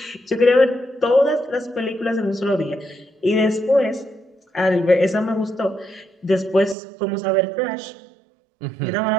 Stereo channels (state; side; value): drops out; left; at 6.8 s